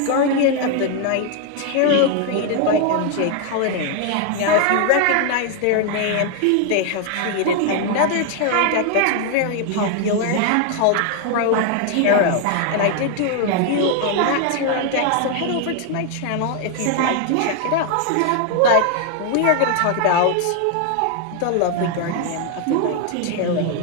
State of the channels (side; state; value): both; different; correlation 0.00